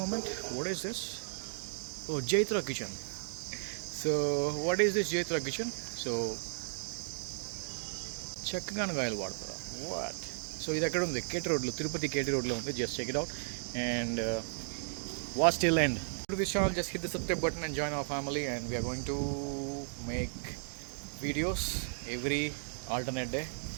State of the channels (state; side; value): silent; left; digital silence